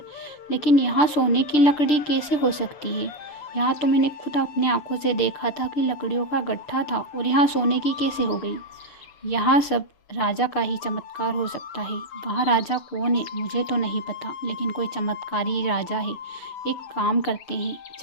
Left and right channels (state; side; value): late; right; 6.7 ms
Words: लेकिन यहाँ सोने की लकड़ी कैसे हो सकती है? यहाँ तो मैंने खुद अपने आंखों से देखा था कि लकड़ियों का गट्ठा था, और यहाँ सोने की कैसे हो गई? यहाँ सब राजा का ही चमत्कार हो सकता है। वहाँ राजा कौन है मुझे तो नहीं पता, लेकिन कोई चमत्कारी राजा है। एक काम करते हैं,